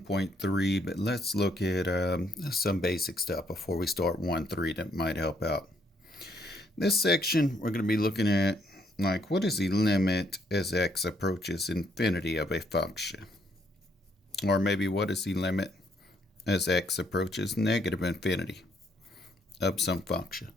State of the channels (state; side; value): normal; both; correlation 0.71